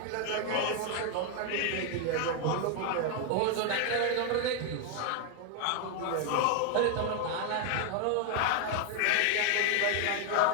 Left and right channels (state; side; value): different; both; correlation 0.01